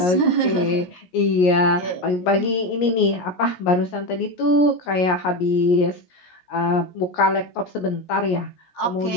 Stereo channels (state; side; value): late; right; 17 ms